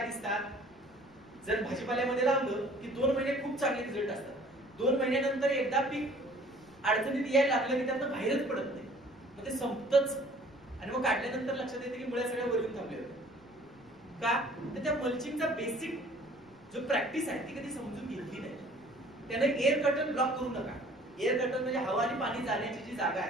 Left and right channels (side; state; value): left; noise; rumble, 28 dB below the sound